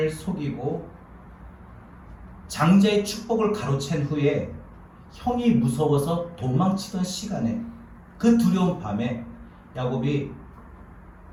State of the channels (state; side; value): identical; both; correlation 1.00